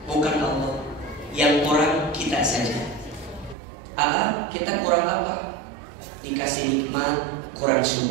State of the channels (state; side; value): drops out; left; at 3.6 s